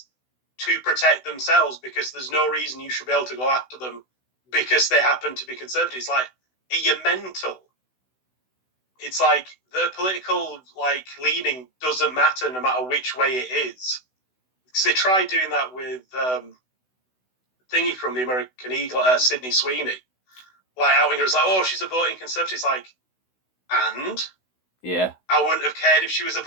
to protect themselves because there's no reason you should be able to go after them because they happen to be conservatives. Like, are you mental? It's like their political like leaning doesn't matter no matter which way it is. Because they tried doing that with thingy from the American Eagle, Sydney Sweeney. Like outing her as like, oh, she's a voting conservative. It's like, and yeah, I wouldn't have cared if she was a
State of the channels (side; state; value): right; late; 16 ms